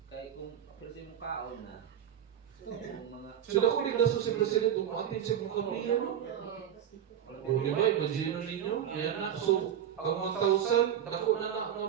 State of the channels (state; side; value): quieter; left; 9.7 dB